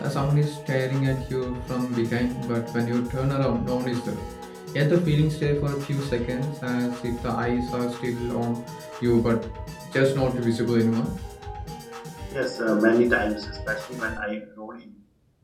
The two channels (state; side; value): identical; both; correlation 1.00